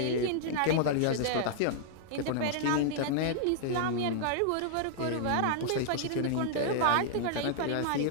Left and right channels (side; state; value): both; different; correlation -0.01